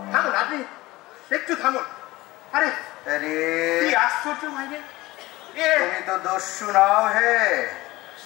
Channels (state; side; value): quieter; right; 19.2 dB